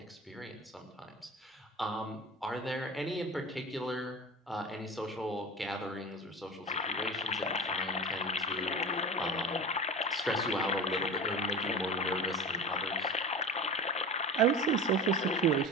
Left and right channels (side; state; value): both; normal; correlation 0.32